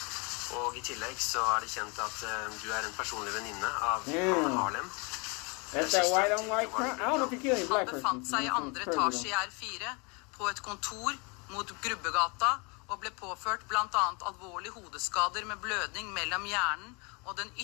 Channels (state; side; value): quieter; right; 31.1 dB